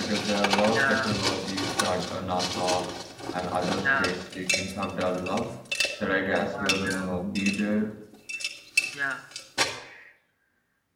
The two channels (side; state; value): both; identical; correlation 1.00